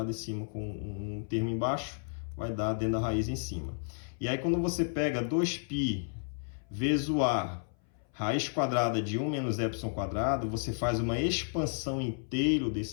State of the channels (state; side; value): silent; right; 56 dB below the other